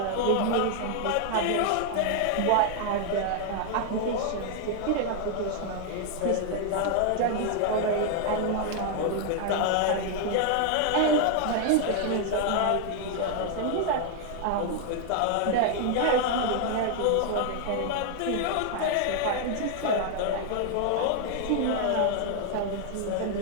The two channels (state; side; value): different; both; correlation 0.00